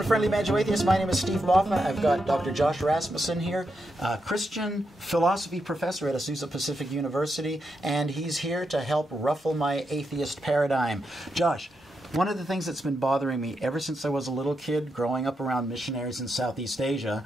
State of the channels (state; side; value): normal; both; correlation 0.84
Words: Friendly Banjo Atheist. My name is Steve Baughman. I've got Dr. Josh Rasmussen here, Christian philosophy professor at Azusa Pacific University, and he's here to help ruffle my atheist paradigm. Josh, one of the things that's been bothering me ever since I was a little kid growing up around missionaries in Southeast Asia